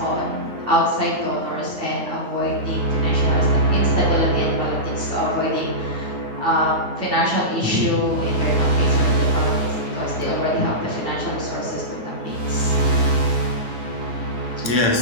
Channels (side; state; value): left; late; 9.5 ms